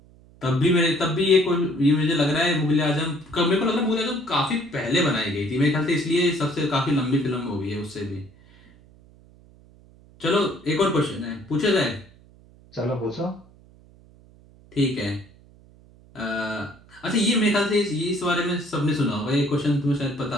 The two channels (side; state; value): right; noise; hum, 26 dB below the sound